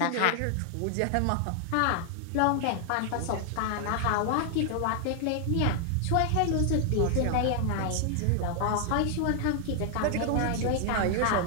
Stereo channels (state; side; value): different; both; correlation 0.00